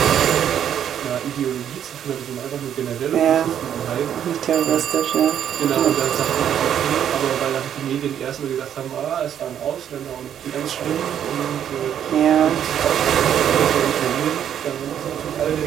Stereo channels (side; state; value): left; quieter; 9.6 dB